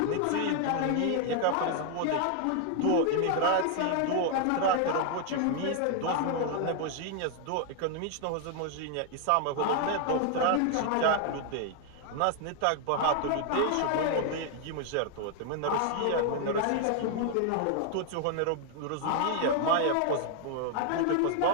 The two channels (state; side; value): different; both; correlation 0.00